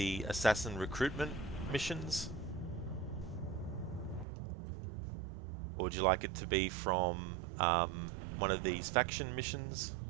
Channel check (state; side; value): drops out; left; at 4.2 s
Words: assassin recruitment missions? Or would you like it to be from one of these faction missions?